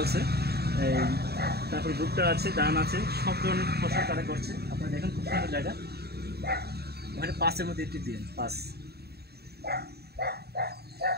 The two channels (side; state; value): left; late; 0.47 ms